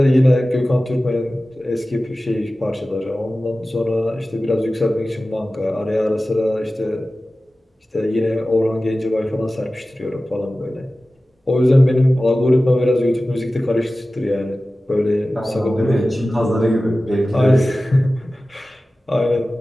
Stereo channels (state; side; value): normal; both; correlation 0.96